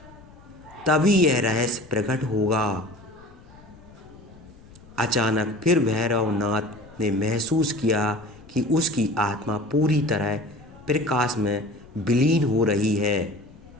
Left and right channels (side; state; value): left; noise; rumble, 23 dB below the sound